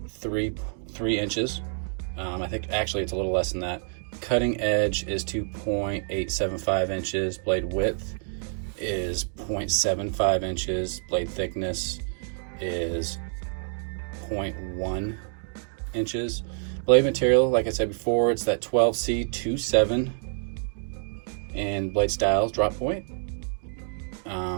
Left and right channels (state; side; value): silent; left; 59 dB below the other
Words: 3 inches. I think actually it's a little less than that. Cutting edge is 2.875 inches. Blade width is 0.75 inches. Blade thickness is 0.1 inches. Blade material, like I said before, it's that 12C27 and blade styles drop point.